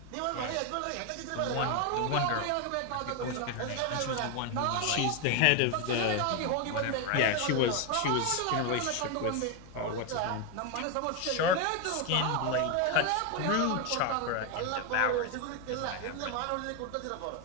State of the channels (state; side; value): different; both; correlation 0.01